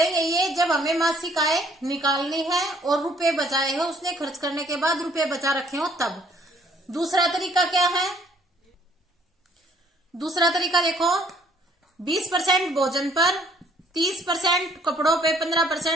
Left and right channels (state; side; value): normal; both; correlation 0.62